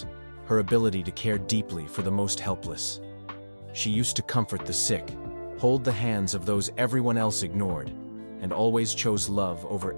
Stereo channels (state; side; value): inverted; both; correlation -1.00